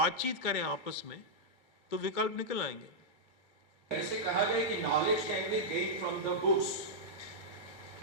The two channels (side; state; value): both; normal; correlation -0.08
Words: करें आपस में तो विकल्प निकल आएंगे। ऐसे कहा गया कि knowledge can be gained from the books,